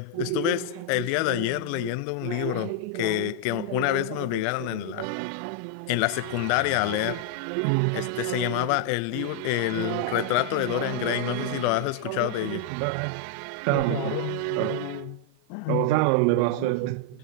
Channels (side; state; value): both; different; correlation 0.00